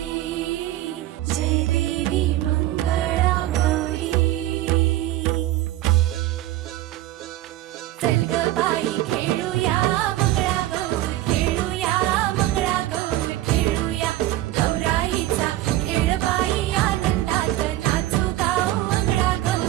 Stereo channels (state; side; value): quieter; left; 15.1 dB